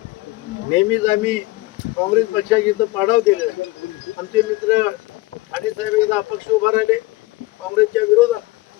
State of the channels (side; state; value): right; quieter; 20.5 dB